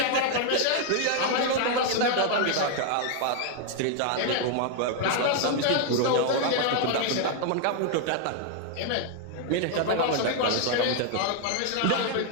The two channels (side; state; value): both; different; correlation 0.00